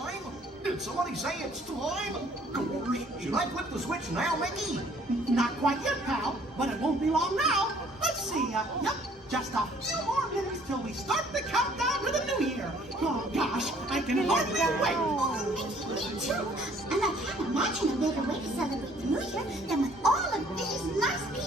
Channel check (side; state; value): both; normal; correlation 0.59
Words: Did somebody say it's time? Gorge, should I flip the switch now, Mickey? Not quite yet, pal, but it won't be long now. Let's see, yep, just a few more minutes till we start the countdown to the new year. Oh gosh, I can hardly wait. Oh, Mickey, me too. And I can't imagine a better way to celebrate the new year than with all of these nice